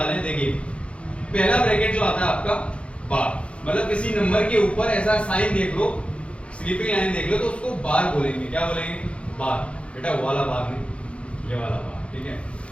हैं। देखिए पहला ब्रैकेट जो आता है आपका बार, मतलब किसी नंबर के ऊपर ऐसा साइन देख लो, स्लीपिंग लाइन देख लो, तो उसको बार बोलेंगे। क्या बोलेंगे? बार। बेटा वो वाला बार नहीं, ये वाला बार। ठीक है,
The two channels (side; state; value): right; late; 0.060 ms